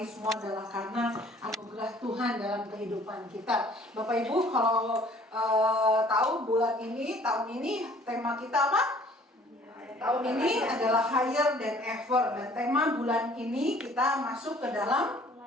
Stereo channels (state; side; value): normal; both; correlation 0.55